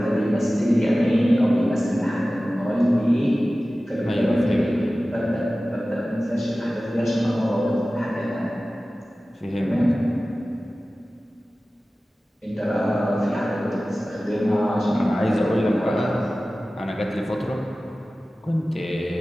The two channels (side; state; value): both; normal; correlation 0.96